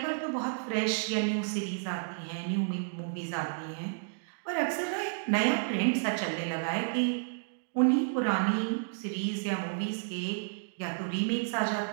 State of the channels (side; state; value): left; silent; digital silence